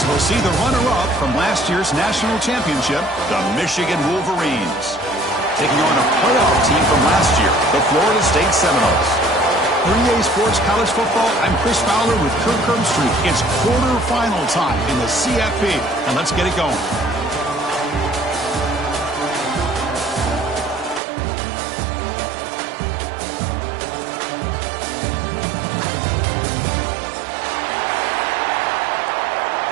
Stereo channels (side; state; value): left; drops out; at 21.0 s